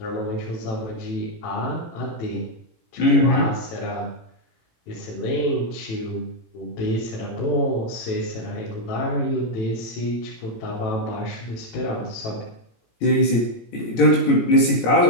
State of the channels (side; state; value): right; late; 18 ms